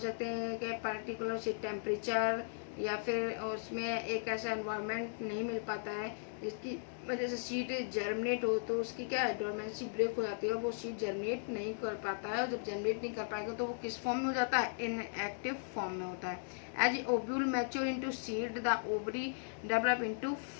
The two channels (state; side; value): silent; right; digital silence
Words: हैं कि पर्टिकुलर से टेम्परेचर या फिर उसमें एक ऐसा एनवायरनमेंट नहीं मिल पाता है जिसकी वजह से सीड जर्मिनेट हो, तो उसकी क्या है, डोरमेंसी ब्रेक हो जाती है और वो सीड जर्मिनेट नहीं कर पाता है। और जब जर्मिनेट नहीं कर पाएगा तो वो किस फॉर्म में हो जाता है, इनएक्टिव फॉर्म में होता है। As ovule mature into seed the ovary develop into